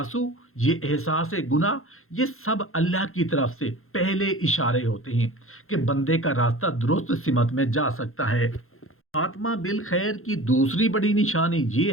یہ احساس گناہ، یہ سب اللہ کی طرف سے پہلے اشارے ہوتے ہیں کہ بندے کا راستہ درست سمت میں جا سکتا ہے۔ خاتمہ بالخیر کی دوسری بڑی نشانی یہ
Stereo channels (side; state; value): right; late; 0.61 ms